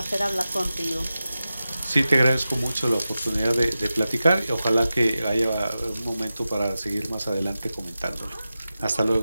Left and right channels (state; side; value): inverted; both; correlation -0.93